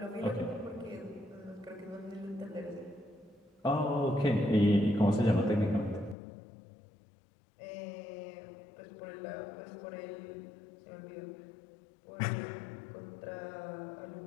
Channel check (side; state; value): right; drops out; at 6.2 s